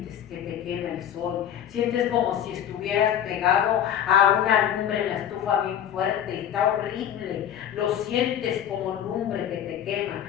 que te quema el sol. Sientes como si estuvieras pegado a una lumbre en la estufa bien fuerte. Está horrible. Lo sientes como lumbre que te quema,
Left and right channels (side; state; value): right; quieter; 9.9 dB